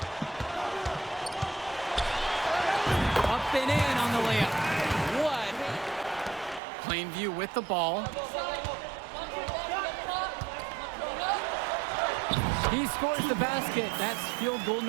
Up and in on the layup. What? Plainview with the ball. He scores the basket. That's field goal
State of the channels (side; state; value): left; drops out; at 6.6 s